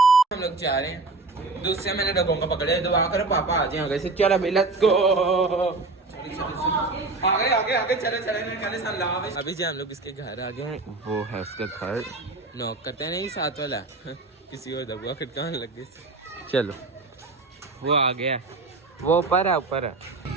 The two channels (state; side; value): quieter; left; 3.5 dB